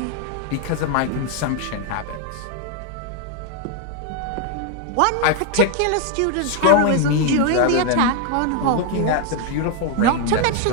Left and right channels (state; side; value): different; both; correlation 0.01